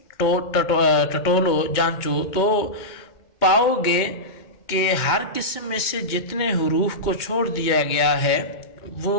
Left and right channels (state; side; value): late; right; 2.1 ms